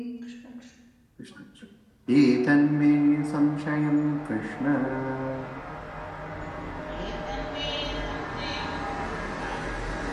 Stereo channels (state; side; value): identical; both; correlation 1.00